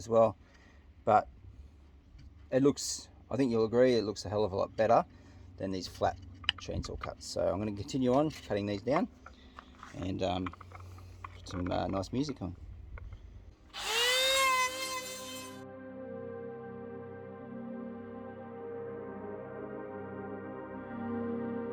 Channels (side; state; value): both; identical; correlation 1.00